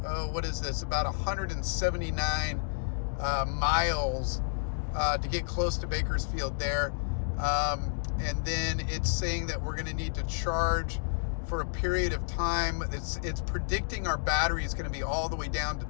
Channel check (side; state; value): right; silent; digital silence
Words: what is this, about 179 miles to get close to Bakersfield there. And then it's saying that we're going to need to charge for a period of time. It's predicting our battery is going to be all the way down to